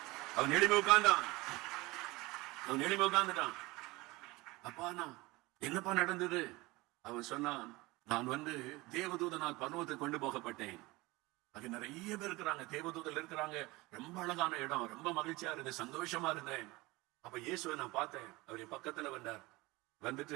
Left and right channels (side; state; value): left; quieter; 21.8 dB